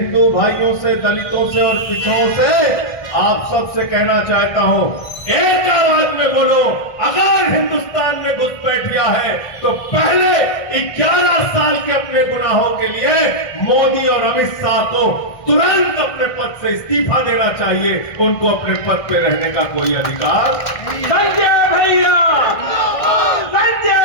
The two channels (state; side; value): late; right; 1.6 ms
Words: भाइयों से, दलितों से और पिछड़ों से आप सबसे कहना चाहता हूं, एक आवाज में बोलो, अगर हिंदुस्तान में घुसपैठिया है तो पहले 11 साल के अपने गुनाहों के लिए मोदी और अमित शाह को तुरंत अपने पद से इस्तीफा देना चाहिए। उनको अपने पद पे रहने का कोई अधिकार। संजय भैया, संजय